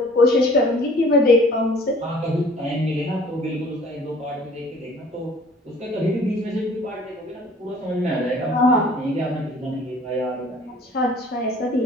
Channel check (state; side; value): normal; both; correlation 0.52